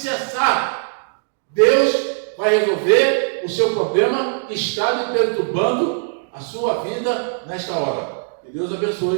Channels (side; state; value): left; silent; digital silence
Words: Deus vai resolver o seu problema que está lhe perturbando a sua vida nesta hora. Que Deus